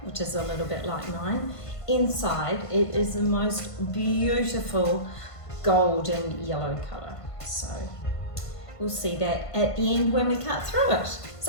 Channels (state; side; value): late; right; 1.5 ms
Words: which is a little bit like mine. Inside it is the most beautiful golden yellow colour. So we'll see that at the end when we cut through it.